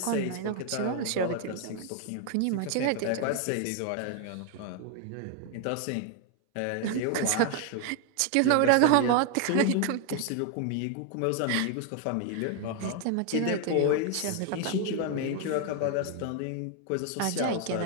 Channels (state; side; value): different; both; correlation 0.01